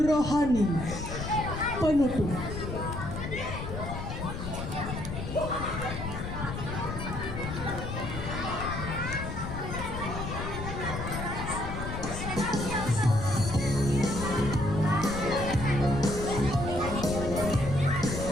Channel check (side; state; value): left; noise; rumble, 6 dB below the sound